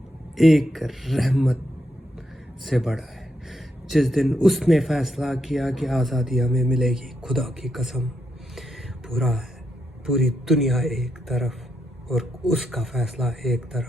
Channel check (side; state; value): both; normal; correlation 0.81